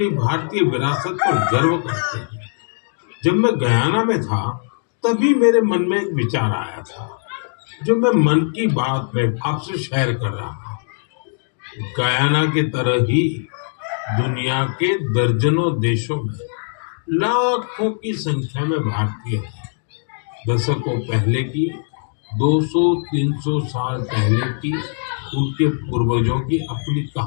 भारतीय विरासत पर गर्व करते हैं। जब मैं गयाना में था तभी मेरे मन में एक विचार आया था जो मैं मन की बात में आपसे शेयर कर रहा हूँ। गयाना की तरह ही दुनिया के दर्जनों देशों में लाखों की संख्या में भारतीय हैं। दशकों पहले की, 200-300 साल पहले की उनके पूर्वजों की अपनी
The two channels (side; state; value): right; silent; digital silence